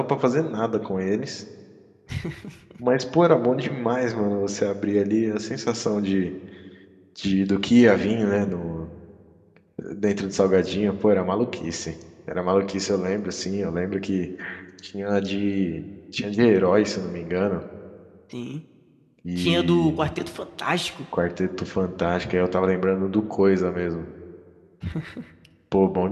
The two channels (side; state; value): both; identical; correlation 1.00